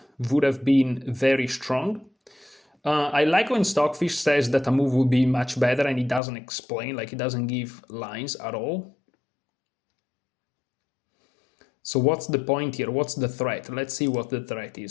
would have been very strong. I like when Stockfish says that a move will be much better, and he doesn't explain, like he doesn't give lines at all. So what's the point here? What's the threat? Let's see what the threat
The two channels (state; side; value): drops out; right; at 6.2 s